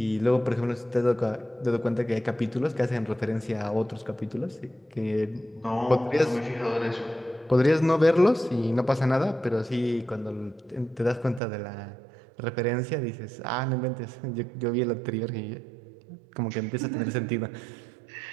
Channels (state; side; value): drops out; left; at 11.4 s